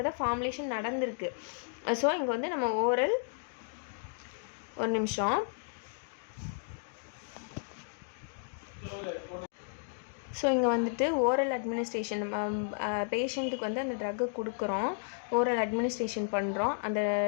தான் ஃபார்முலேஷன் நடந்திருக்கு. ஸோ இங்கே வந்து நம்ம ஓரல், ஒரு நிமிஷம், ஸோ இங்கே வந்துட்டு ஓரல் அட்மினிஸ்ட்ரேஷன், பேஷண்ட்டுக்கு வந்து அந்த ட்ரக்கை கொடுக்குறோம், ஓரல் அட்மினிஸ்ட்ரேஷன் பண்ணுறோம். அந்த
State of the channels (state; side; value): silent; right; digital silence